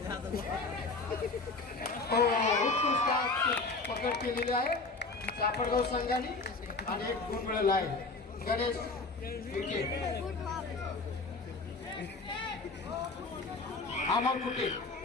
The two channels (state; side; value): quieter; right; 3.7 dB